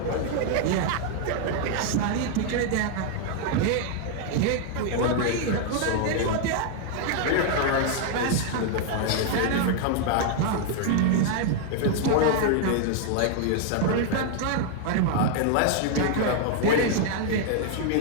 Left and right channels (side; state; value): both; different; correlation 0.00